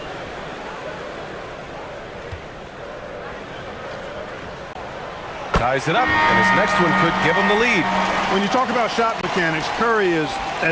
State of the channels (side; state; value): both; identical; correlation 1.00